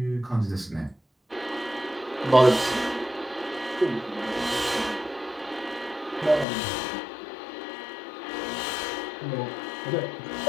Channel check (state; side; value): drops out; right; at 6.5 s